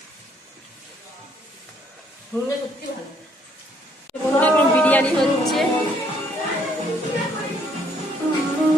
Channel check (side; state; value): both; normal; correlation 0.66